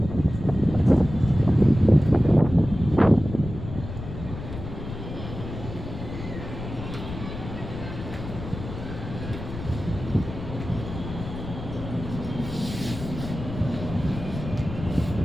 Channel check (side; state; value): left; noise; rumble, 9 dB below the sound